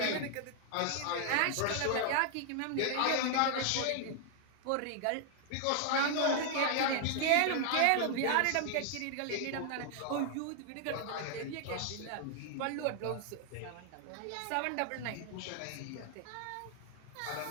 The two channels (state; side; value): different; both; correlation 0.00